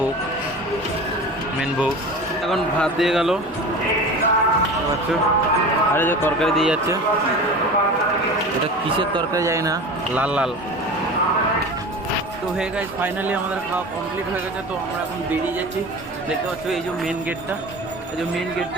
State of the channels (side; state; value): both; normal; correlation 0.34